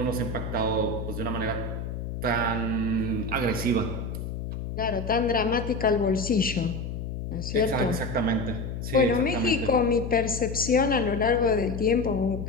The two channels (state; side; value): noise; left; hum, 6 dB below the sound